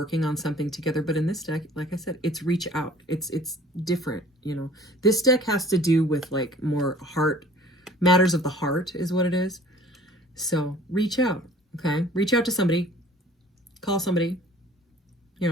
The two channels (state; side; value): normal; both; correlation 0.50